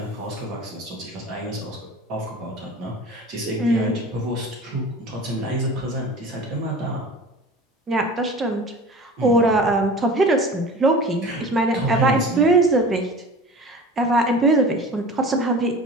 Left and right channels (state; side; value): normal; both; correlation 0.38